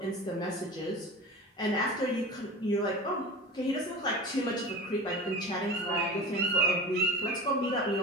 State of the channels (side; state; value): both; normal; correlation 0.33